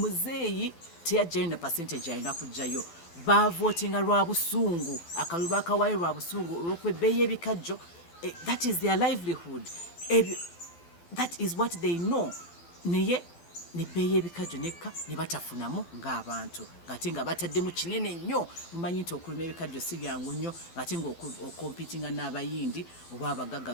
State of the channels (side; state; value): right; late; 12 ms